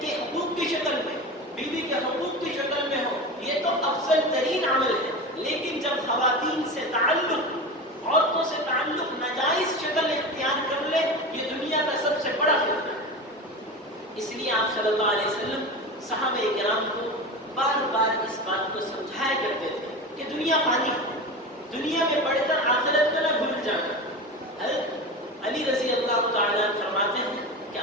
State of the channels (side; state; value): both; normal; correlation 0.26